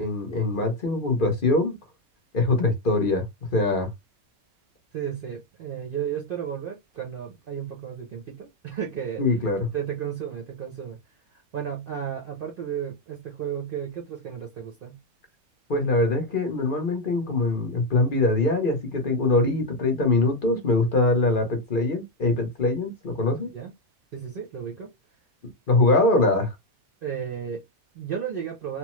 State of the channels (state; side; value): normal; both; correlation 0.05